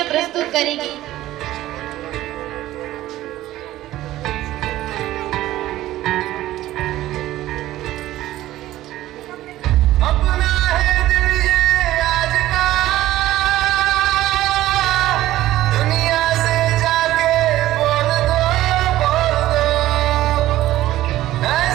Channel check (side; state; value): left; quieter; 15.0 dB